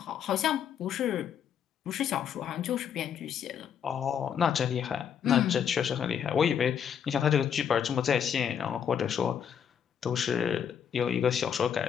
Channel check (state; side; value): quieter; right; 8.2 dB